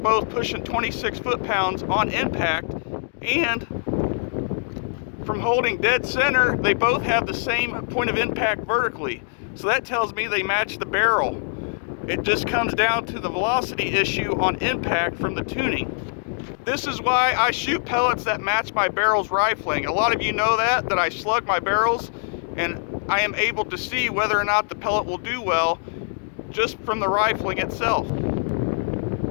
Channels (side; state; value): right; silent; digital silence